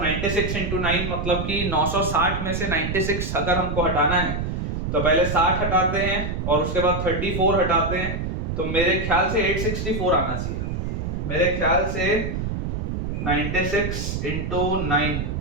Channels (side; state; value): right; noise; rumble, 3 dB below the sound